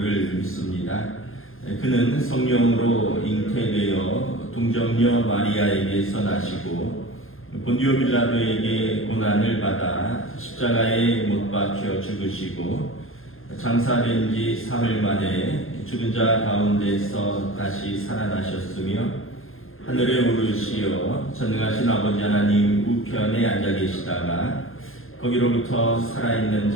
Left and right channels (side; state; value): right; late; 0.60 ms